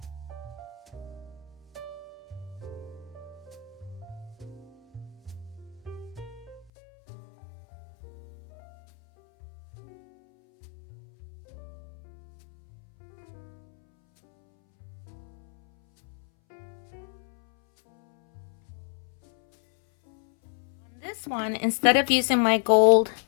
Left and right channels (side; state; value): right; drops out; at 6.7 s